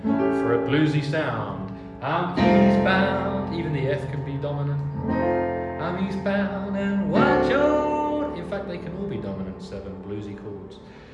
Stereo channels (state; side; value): identical; both; correlation 1.00